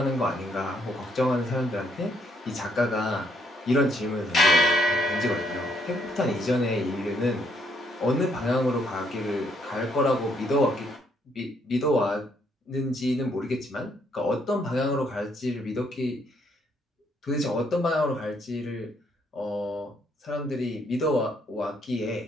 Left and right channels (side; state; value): both; normal; correlation 0.71